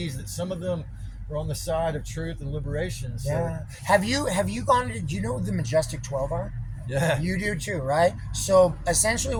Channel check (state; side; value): identical; both; correlation 1.00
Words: that some of them are on the side of truth and liberation. So. Yeah. Have you gone to? Do you know what the Majestic 12 are? Yeah. You do too, right? So essentially,